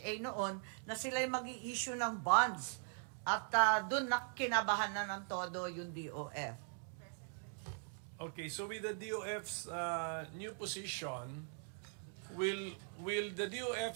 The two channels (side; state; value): left; silent; 51 dB below the other